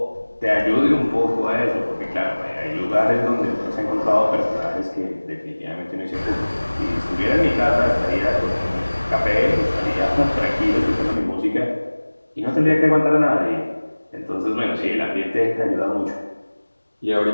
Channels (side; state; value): both; inverted; correlation -1.00